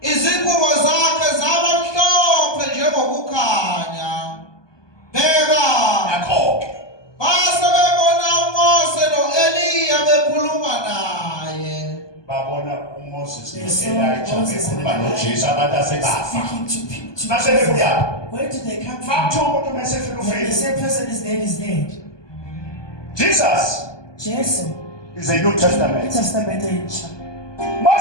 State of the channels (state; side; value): late; right; 1.2 ms